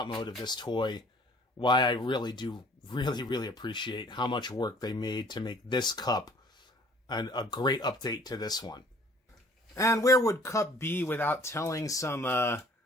mode of this toy why I really do really appreciate how much work they made to make this Cup a great update to this one. And where would Cup be without telling some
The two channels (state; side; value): normal; both; correlation 0.54